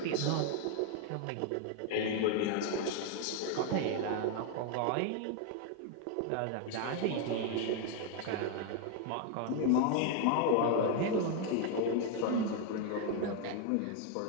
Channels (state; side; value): different; both; correlation 0.00